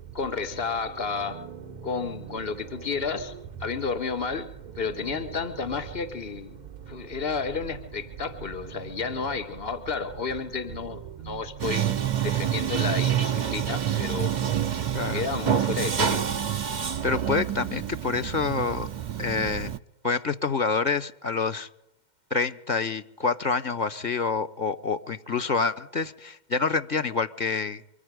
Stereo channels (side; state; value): left; late; 2.1 ms